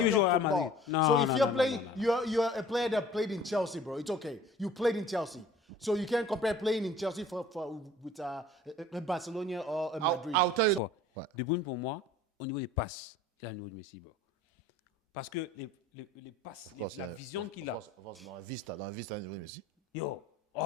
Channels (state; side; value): normal; both; correlation 0.48